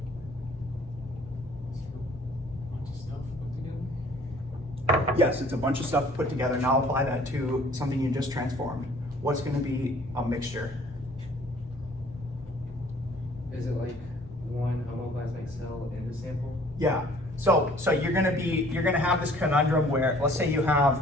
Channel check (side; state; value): both; normal; correlation 0.55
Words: Yes, it's a bunch of stuff put together. Now apply that to something you just transformed. What's going to be a mixture? Is it like one homoplasmic cell in the sample? Yeah. So you're gonna have this conundrum where, let's say you